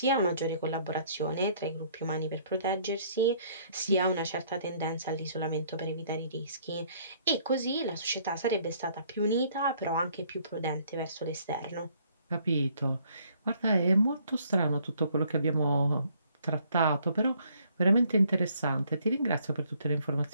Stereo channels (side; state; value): both; inverted; correlation -0.63